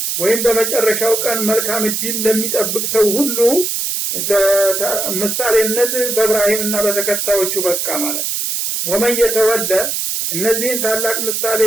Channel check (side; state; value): right; noise; hiss, 1 dB below the sound